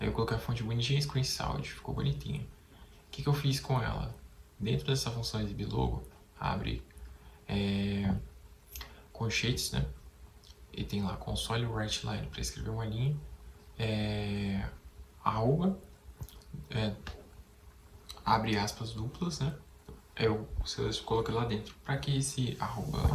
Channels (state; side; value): identical; both; correlation 1.00